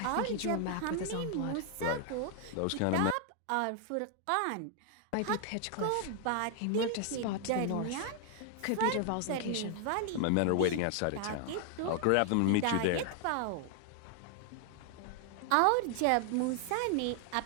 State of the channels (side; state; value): both; different; correlation 0.00